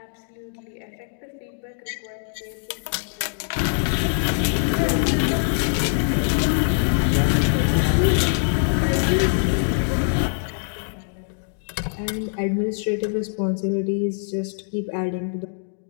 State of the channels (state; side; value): silent; right; digital silence